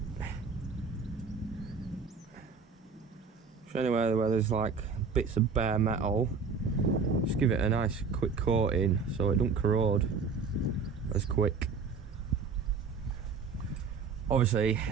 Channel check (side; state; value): left; quieter; 5.0 dB